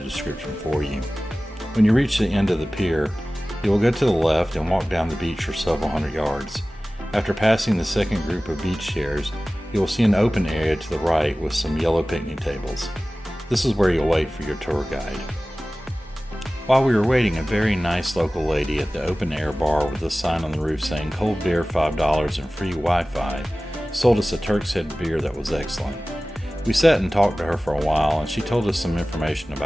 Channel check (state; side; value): normal; both; correlation 0.97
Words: for you. When you reach the end of the pier, you will go to the left and walk down the beach for several hundred yards. After passing the second group of beach chairs, you will see an open area to the right with some yellow picnic tables. This is where you'll wait for your tour guide. While we were waiting, a very nice local lady at the open air bar with a sign on the roof saying cold beer $5 and free Wi-Fi sold us a Turk's Head beer that was excellent. We sat and talked to her for a while, and she told us some information